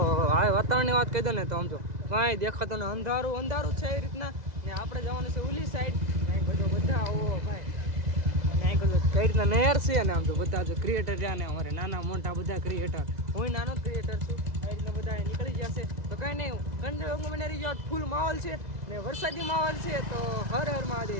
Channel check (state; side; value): late; left; 2.0 ms